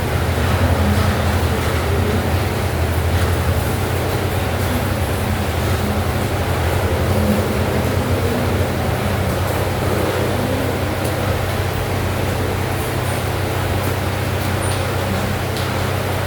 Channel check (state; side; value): identical; both; correlation 1.00